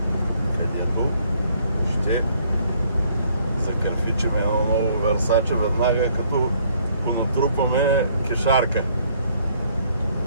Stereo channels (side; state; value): both; inverted; correlation -0.65